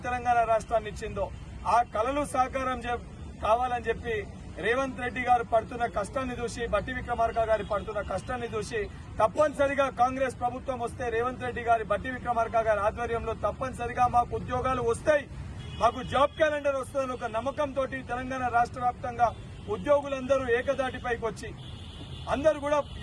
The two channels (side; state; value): both; identical; correlation 1.00